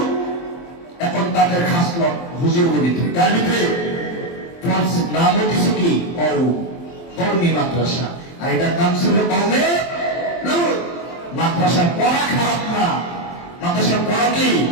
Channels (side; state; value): right; late; 23 ms